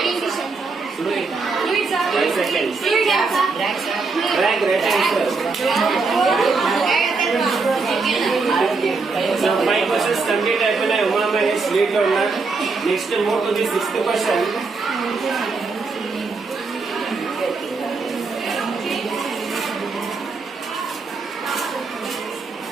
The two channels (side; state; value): left; quieter; 4.2 dB